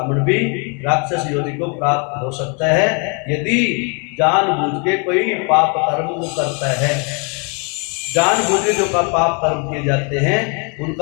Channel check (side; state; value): right; quieter; 35.4 dB